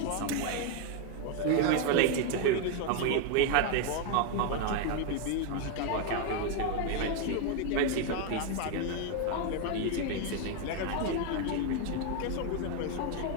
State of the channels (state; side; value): different; both; correlation 0.01